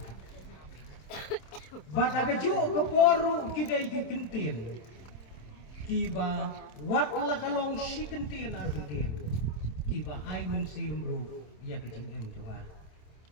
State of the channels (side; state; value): right; late; 27 ms